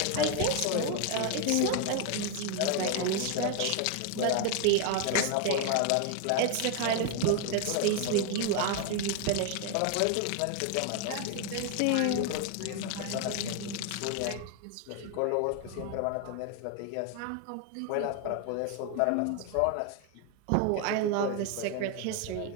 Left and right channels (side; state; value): both; different; correlation 0.01